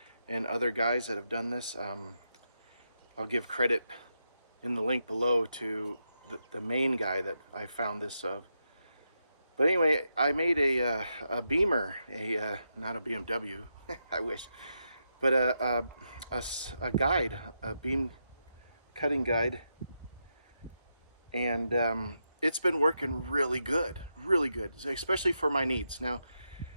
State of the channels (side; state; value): both; inverted; correlation -0.85